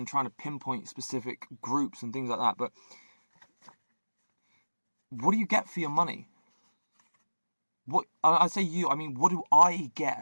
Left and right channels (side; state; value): both; inverted; correlation -1.00